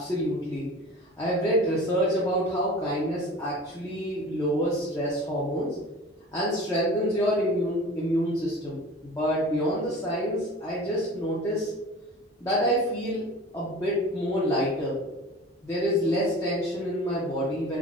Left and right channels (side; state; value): both; normal; correlation 0.39